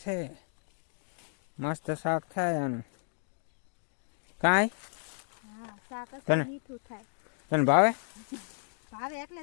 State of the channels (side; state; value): right; silent; digital silence